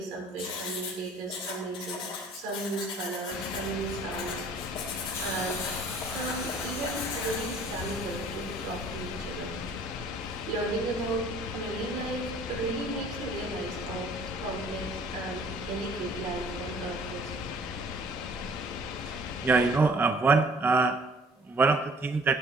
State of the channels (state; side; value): normal; both; correlation 0.53